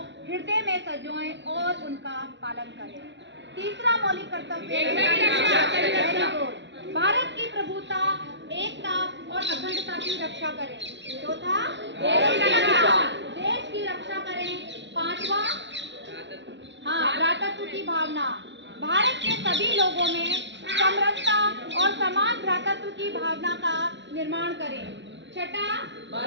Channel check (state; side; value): late; left; 0.52 ms